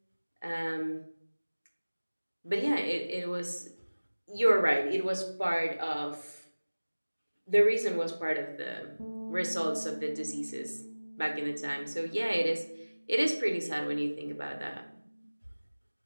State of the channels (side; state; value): both; inverted; correlation -1.00